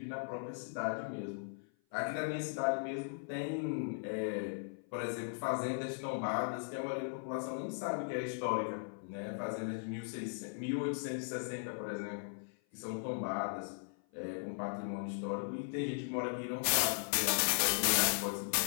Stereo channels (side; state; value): right; silent; 52 dB below the other